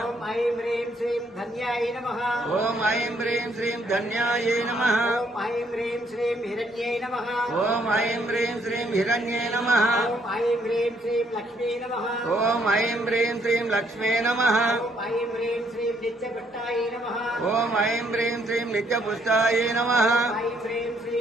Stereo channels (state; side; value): normal; both; correlation 0.69